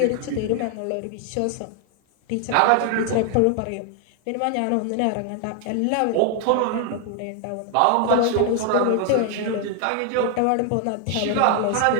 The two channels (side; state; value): both; different; correlation 0.00